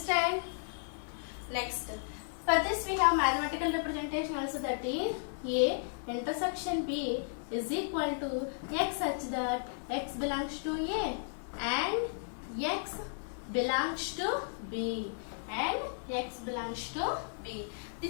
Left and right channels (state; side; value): silent; right; 55 dB below the other